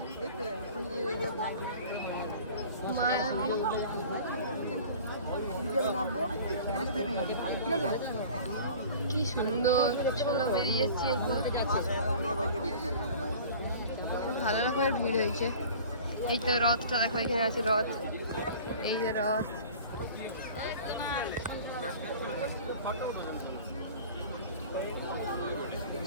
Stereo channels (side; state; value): both; inverted; correlation -0.43